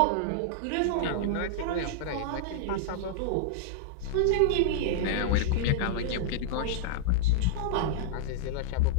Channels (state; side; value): different; both; correlation -0.01